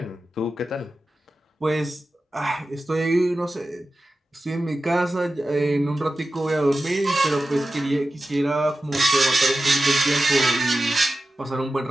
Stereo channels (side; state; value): both; normal; correlation 0.93